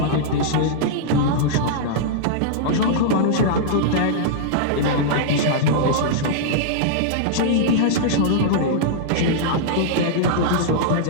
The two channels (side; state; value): both; different; correlation -0.02